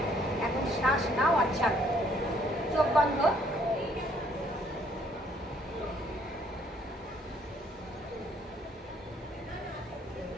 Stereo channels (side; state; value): both; normal; correlation 0.64